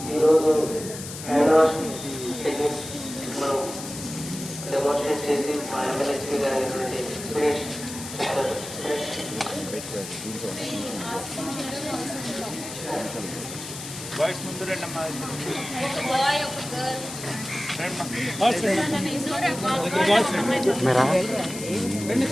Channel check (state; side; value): noise; left; hiss, 10 dB below the sound